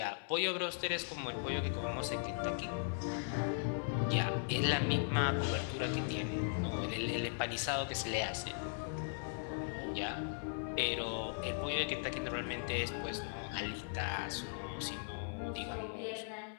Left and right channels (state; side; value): silent; right; 52 dB below the other